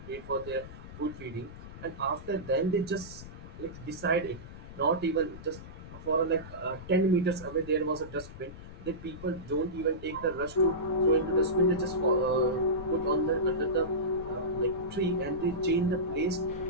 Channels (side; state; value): left; noise; rumble, 14 dB below the sound